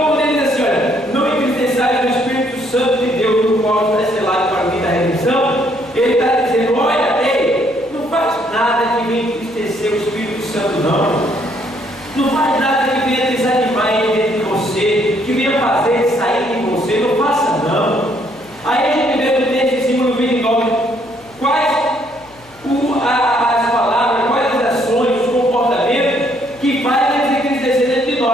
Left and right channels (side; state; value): left; noise; hum, 28 dB below the sound